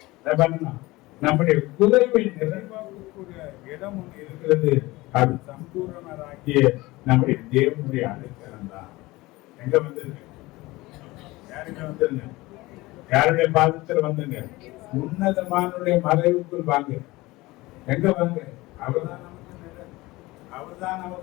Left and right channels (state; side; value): quieter; right; 20.4 dB